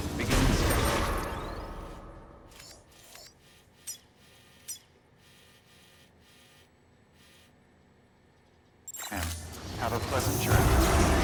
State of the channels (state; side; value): identical; both; correlation 1.00